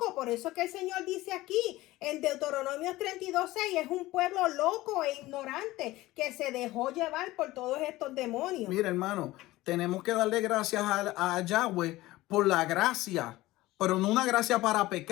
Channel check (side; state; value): right; quieter; 18.0 dB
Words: Por eso es que el Señor dice aquí en Deuteronomio 32:6, es un pueblo loco e ignorante que se dejó llevar por todos estos demonios. Mira, hermano, tenemos que darle gracias a Yahweh por la gracia, pero no una gracia para